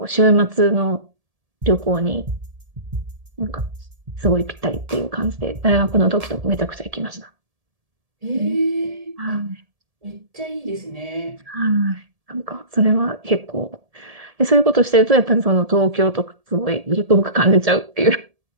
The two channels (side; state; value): left; late; 1.7 ms